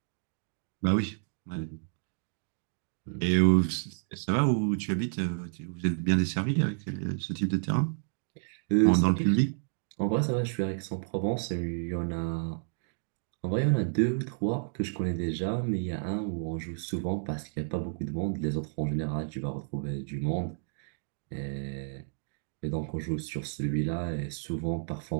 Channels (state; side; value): silent; left; digital silence